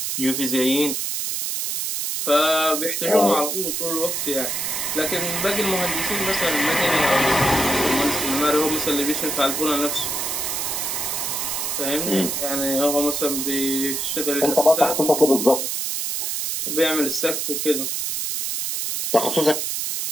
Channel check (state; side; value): noise; right; hiss, 2 dB below the sound